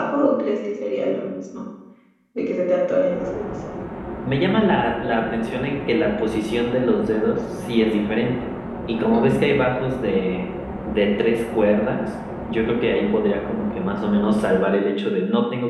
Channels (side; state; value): both; identical; correlation 1.00